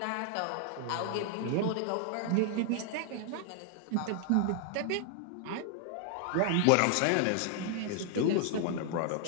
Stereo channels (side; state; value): both; different; correlation 0.00